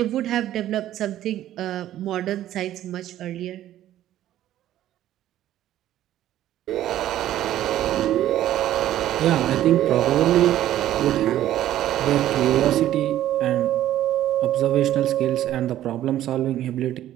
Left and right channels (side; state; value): left; quieter; 12.8 dB